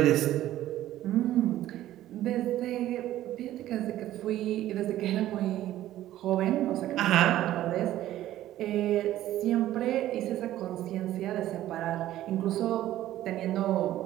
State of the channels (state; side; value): quieter; left; 13.7 dB